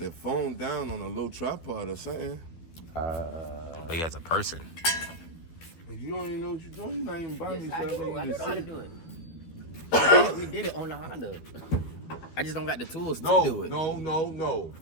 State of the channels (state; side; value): late; right; 12 ms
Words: phone down on a little tripod or something. But he has a person. If you don't even know what you're doing, you're not even by yes, yourself. I do. I You know just how to sit. do it. We did it on the Honda. I just don't got the tools to do it. No.